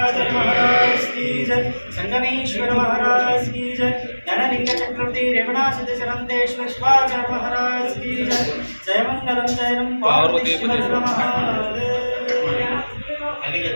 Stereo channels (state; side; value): inverted; both; correlation -1.00